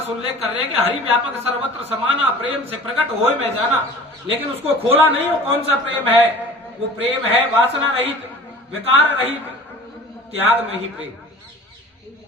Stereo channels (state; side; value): normal; both; correlation 0.43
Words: उल्लेख कर रहे हैं कि हरि व्यापक सर्वत्र समाना, प्रेम से प्रकट होए में जाना। लेकिन उसको खोला नहीं। वो कौन सा प्रेम है? वो प्रेम है वासना रहित, विकार रहित, त्याग में ही प्रेम।